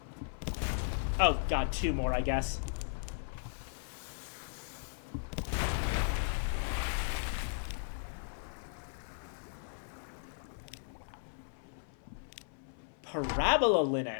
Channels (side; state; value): right; silent; 54 dB below the other